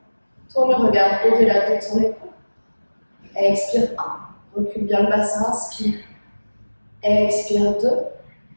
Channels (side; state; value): both; inverted; correlation -1.00